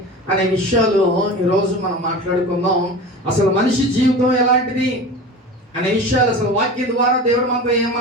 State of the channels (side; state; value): both; normal; correlation 0.32